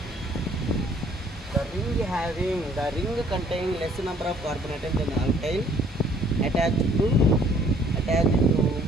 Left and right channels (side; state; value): both; normal; correlation 0.60